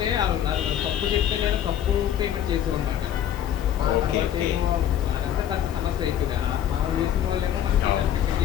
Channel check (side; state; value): right; quieter; 10.3 dB